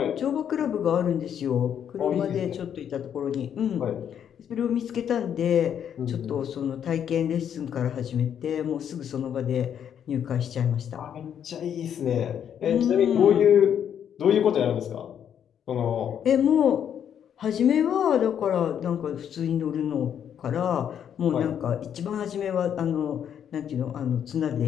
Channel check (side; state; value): right; quieter; 8.9 dB